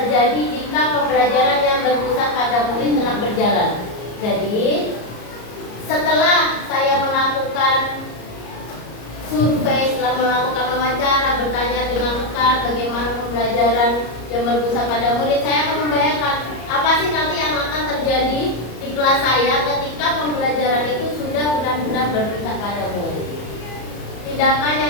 jika pembelajaran yang berpusat pada murid telah berjalan? Jadi, setelah saya melakukan survei, setelah melakukan wawancara, bertanya dengan rekan bagaimana pembelajaran yang berpusat pada murid, saya akan membayangkan apa sih nanti yang akan terjadi di kelas saya ketika pembelajaran itu sudah benar-benar berpusat pada murid. Tindakan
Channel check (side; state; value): right; late; 34 ms